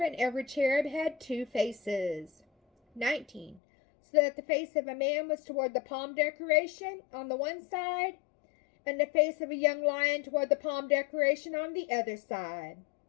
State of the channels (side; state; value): right; drops out; at 3.6 s